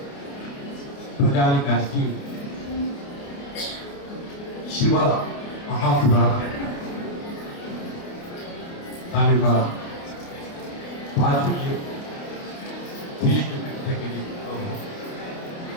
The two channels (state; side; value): late; right; 29 ms